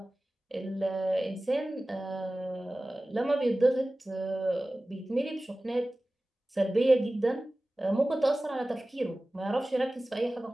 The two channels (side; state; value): both; normal; correlation 0.97